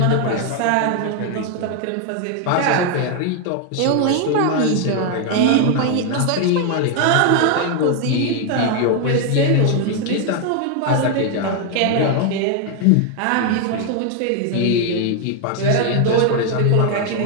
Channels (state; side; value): different; both; correlation 0.01